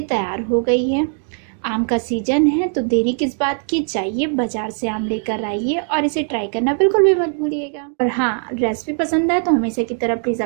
तैयार हो गई है। आम का सीजन है तो देरी किस बात की, जाइए बाजार से आम लेकर आइए और इसे ट्राई करना बिल्कुल भी मत भूलिएगा। और हाँ, रेसिपी पसंद आए तो हमेशा की तरह प्लीज़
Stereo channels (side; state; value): left; silent; 56 dB below the other